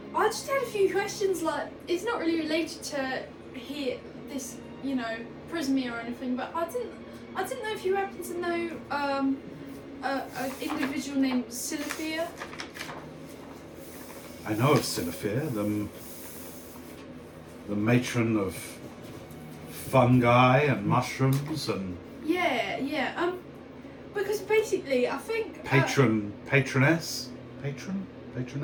just had a few questions. Like, it's not really related to here, this, you know, Prismia or anything. But I didn't know if you happen to know an individual named Silifia. I know of Silifir, the matron of fungi and mushrooms and Yeah. Because basically, I think patroness patron.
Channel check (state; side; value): identical; both; correlation 1.00